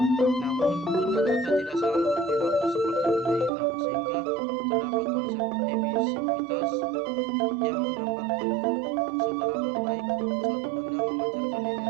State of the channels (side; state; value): left; drops out; at 3.5 s